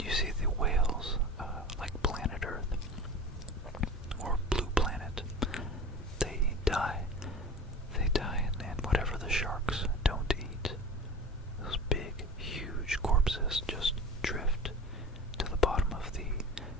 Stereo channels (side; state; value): both; normal; correlation 0.37